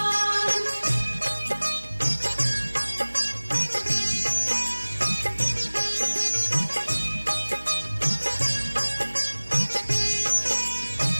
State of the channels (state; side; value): inverted; both; correlation -1.00